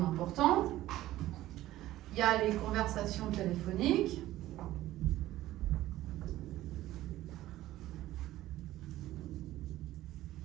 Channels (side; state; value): left; quieter; 15.2 dB